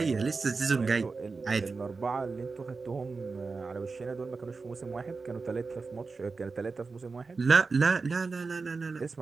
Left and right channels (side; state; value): left; quieter; 4.3 dB